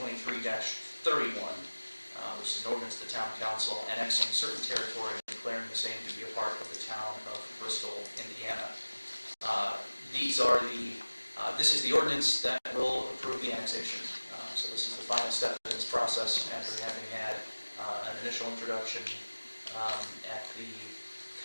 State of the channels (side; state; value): both; inverted; correlation -1.00